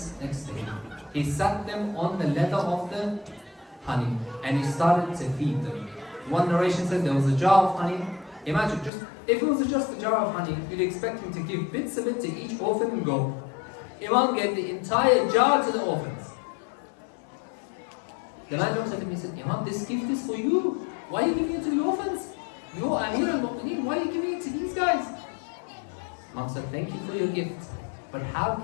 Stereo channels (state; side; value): drops out; right; at 8.9 s